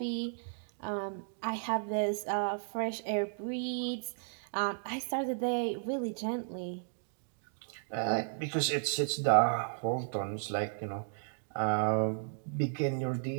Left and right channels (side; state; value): left; silent; digital silence